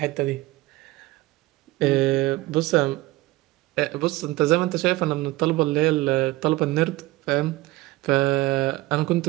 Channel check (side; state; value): left; quieter; 19.0 dB